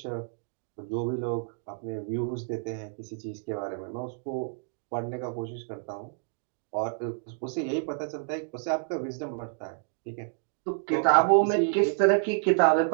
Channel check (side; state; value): left; silent; digital silence